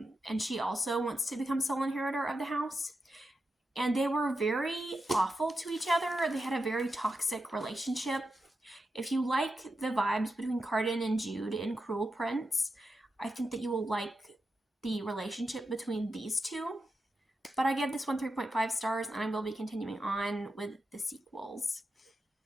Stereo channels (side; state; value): both; normal; correlation 0.88